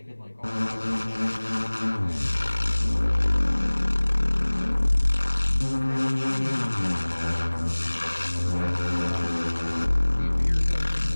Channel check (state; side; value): inverted; both; correlation -1.00